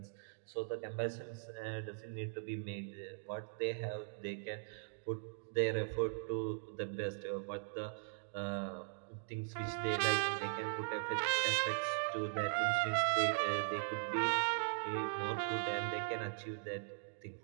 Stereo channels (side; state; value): left; silent; digital silence